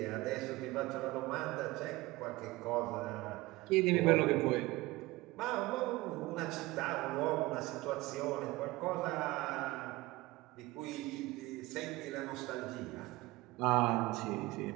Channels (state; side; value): quieter; left; 20.3 dB